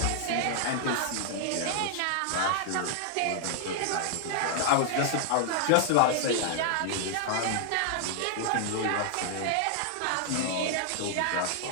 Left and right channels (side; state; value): both; different; correlation -0.01